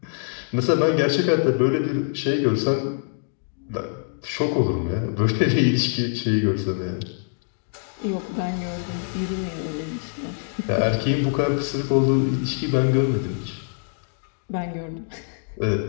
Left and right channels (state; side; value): silent; right; digital silence